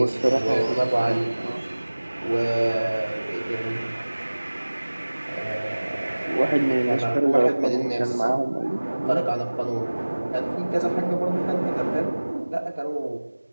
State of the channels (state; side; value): inverted; both; correlation -1.00